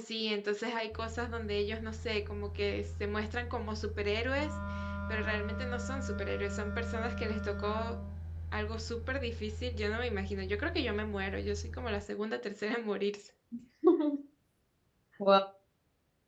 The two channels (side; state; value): both; identical; correlation 1.00